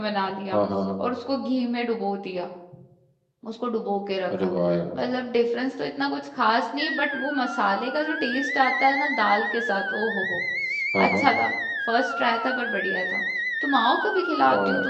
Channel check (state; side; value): identical; both; correlation 1.00